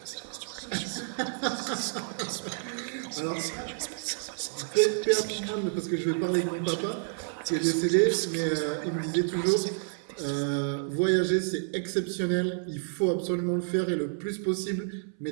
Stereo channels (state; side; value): silent; left; 58 dB below the other